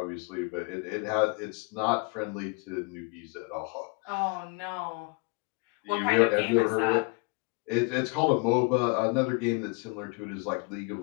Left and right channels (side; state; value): right; quieter; 31.7 dB